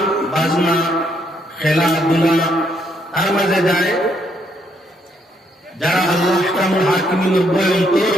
বাজনা খেলাধুলা তার মাঝে যায়। যারা আল্লাহ আহকামুল হাকিমিনের বই অন্তর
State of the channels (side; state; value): both; normal; correlation 0.73